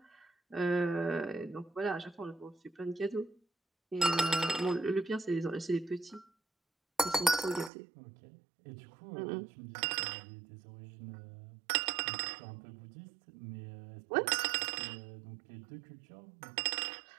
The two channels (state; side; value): drops out; left; at 7.7 s